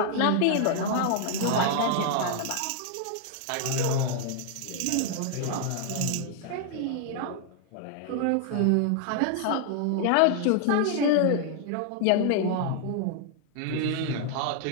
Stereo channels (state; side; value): different; both; correlation 0.00